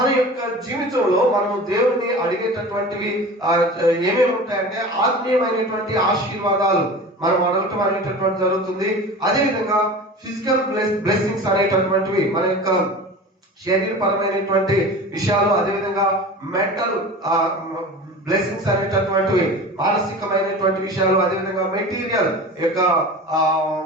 యొక్క జీవితంలో మనము దేవుని అడిగేటటువంటివి ఏమేమి ఉంటాయంటే ఆత్మీయమైనటువంటి ఆశీర్వాదాలు మనం అడగటం అనేటటువంటి జరుగుతుంది. అదే విధంగా ఫిజికల్ బ్లెస్సింగ్స్ అనేటటువంటివి మన యొక్క శరీరపరమైనటువంటి విషయాలు, అదేవిధంగా మెంటల్ బ్లెస్సింగ్స్ అనేటటువంటివి మానసికమైనటువంటి విషయాలు, అదేవిధంగా మెటీరియల్ యొక్క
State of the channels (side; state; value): both; normal; correlation 0.35